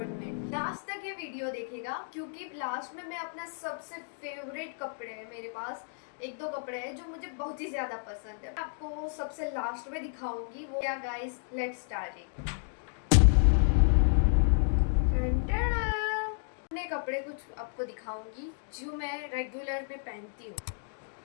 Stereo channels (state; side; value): silent; right; digital silence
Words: में। लास्ट तक ये वीडियो देखेगा क्योंकि लास्ट में मैं अपना सबसे फेवरेट कपड़े हैं, मेरे पास एक दो कपड़े हैं जो मुझे बहुत ही ज्यादा पसंद है, आपको सबसे लास्ट में दिखाऊंगी वो क्या। Guys let's start. अपने कपड़े कुछ आपको दिखाऊंगी जो मैं रेगुलर में पहनती हूँ।